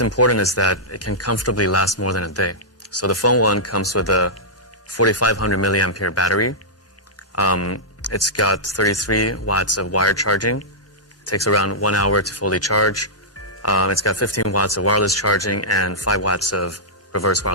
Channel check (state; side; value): normal; both; correlation -0.11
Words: important is that it can comfortably last more than a day. So the Phone 1 comes with a 4500 milliampere battery. It's got 33 watts of wired charging. It takes around 1 hour to fully charge. It's got 15 watts of wireless charging and 5 watts of reverse